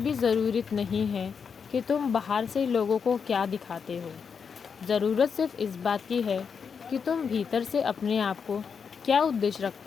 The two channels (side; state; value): right; quieter; 6.2 dB